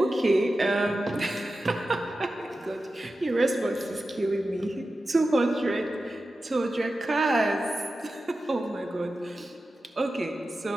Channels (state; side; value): normal; both; correlation 0.93